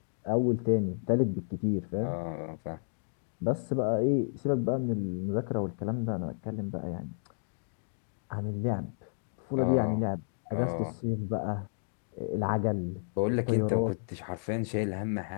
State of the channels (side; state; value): right; silent; digital silence